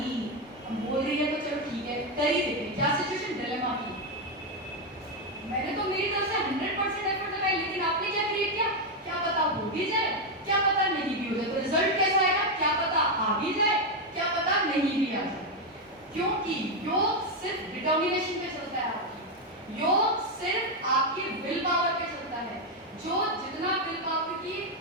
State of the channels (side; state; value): both; normal; correlation 0.04